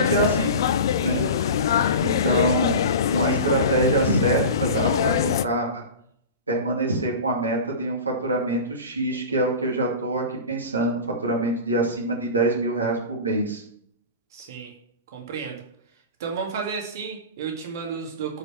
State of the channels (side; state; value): both; inverted; correlation -0.32